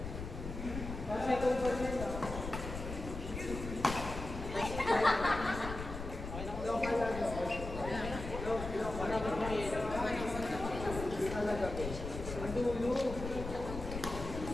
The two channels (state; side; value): noise; left; rumble, 7 dB below the sound